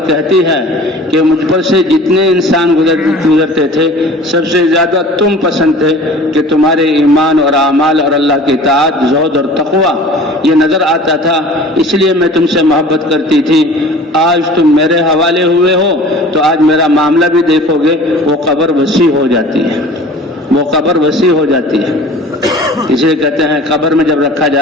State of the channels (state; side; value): normal; both; correlation 0.44